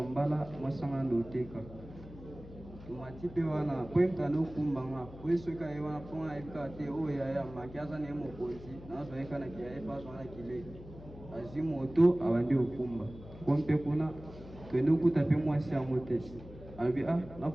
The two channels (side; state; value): left; noise; hum, 16 dB below the sound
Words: mbala mwasanga ndoteka. Tumati pe wana kwemta no kumbanga kwesoka ye wana ponga ekate o ya makiaza ne mokonzi nazo eka na kiaye paso na kile. Azwi moto abandi okumba. Kompe kuna twende ukuta pe mwasi ya motesi. Albi na